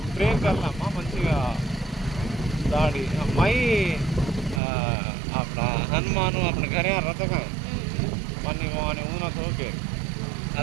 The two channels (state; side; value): drops out; left; at 4.6 s